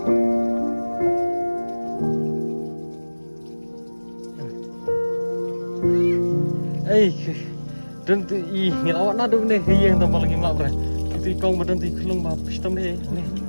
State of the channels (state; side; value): inverted; both; correlation -1.00